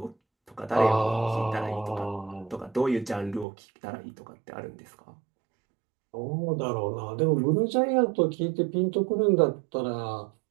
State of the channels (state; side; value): drops out; left; at 3.5 s